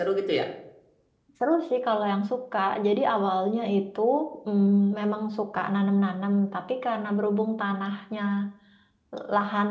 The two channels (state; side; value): identical; both; correlation 1.00